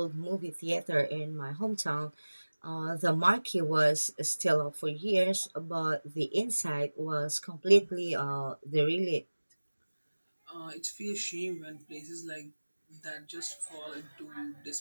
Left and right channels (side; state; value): both; inverted; correlation -1.00